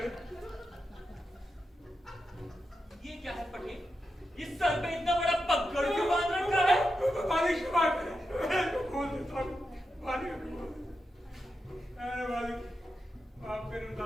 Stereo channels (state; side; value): normal; both; correlation 0.88